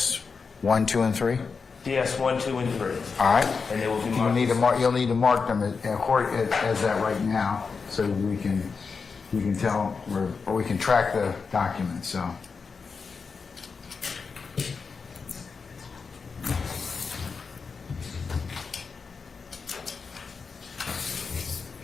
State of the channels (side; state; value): right; quieter; 5.1 dB